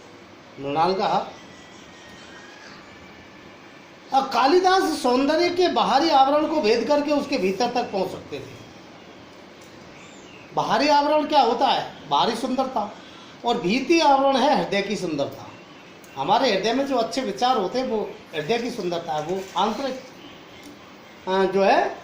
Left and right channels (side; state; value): both; identical; correlation 1.00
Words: मृणाल का हार। अब कालिदास सौंदर्य के बाहरी आवरण को भेद करके उसके भीतर तक पहुंच सकते थे। बाहरी आवरण क्या होता है? बाहरी सुंदरता, और भीतरी आवरण है हृदय की सुंदरता। हमारे हृदय में जो अच्छे विचार होते हैं वो हृदय की सुंदरता है, वो आंतरिक जो है